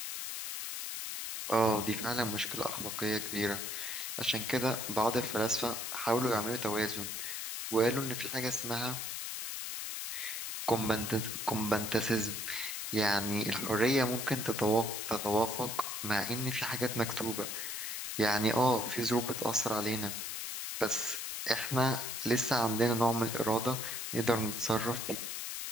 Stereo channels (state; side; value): noise; left; hiss, 4 dB below the sound